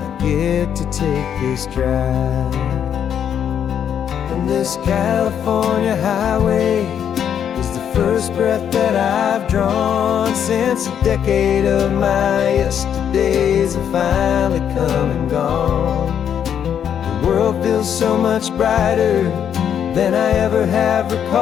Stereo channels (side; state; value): right; quieter; 8.8 dB